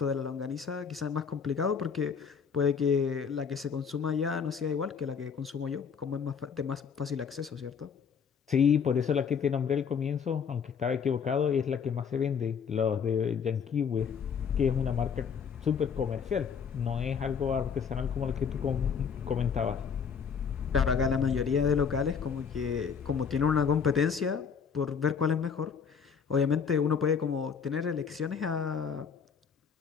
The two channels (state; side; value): quieter; right; 6.6 dB